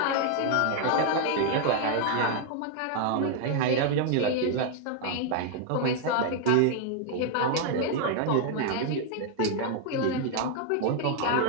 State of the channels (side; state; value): both; different; correlation 0.00